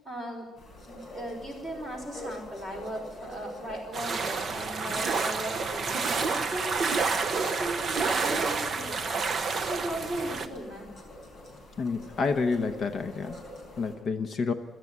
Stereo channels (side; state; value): both; normal; correlation 0.76